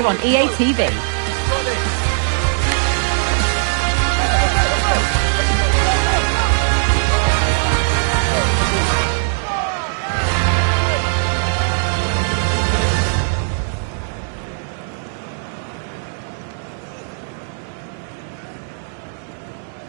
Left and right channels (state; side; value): silent; left; digital silence